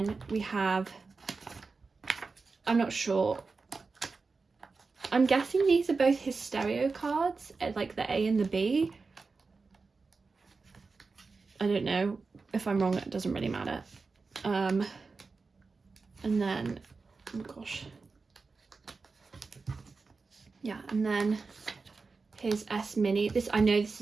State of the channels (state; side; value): quieter; left; 4.3 dB